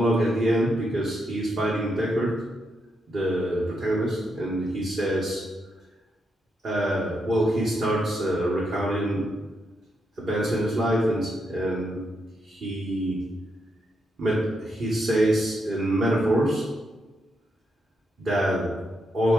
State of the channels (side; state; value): both; normal; correlation 0.81